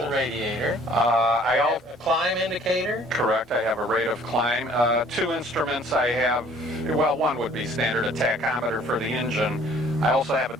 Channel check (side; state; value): both; normal; correlation 0.56